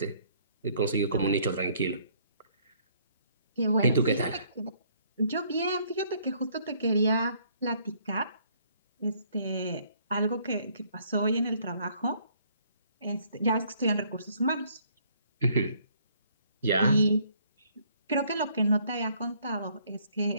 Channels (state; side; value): inverted; both; correlation -0.64